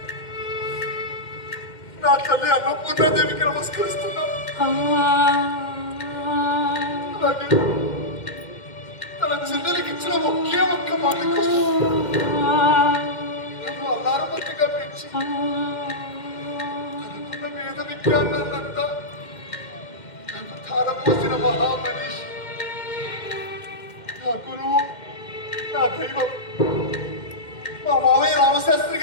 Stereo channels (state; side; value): late; right; 2.1 ms